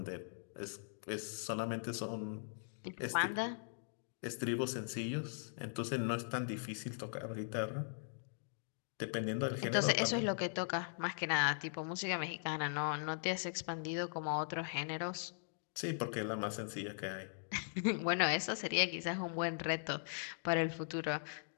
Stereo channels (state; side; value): silent; right; digital silence